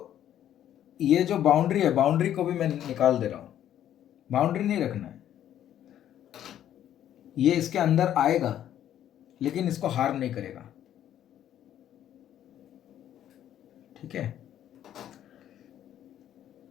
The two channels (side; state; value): right; quieter; 11.1 dB